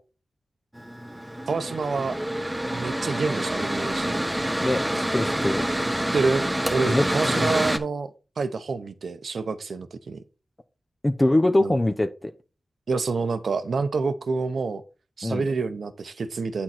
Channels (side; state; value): both; normal; correlation 0.95